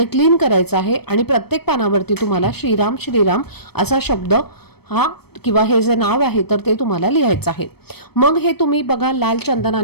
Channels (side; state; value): right; late; 0.97 ms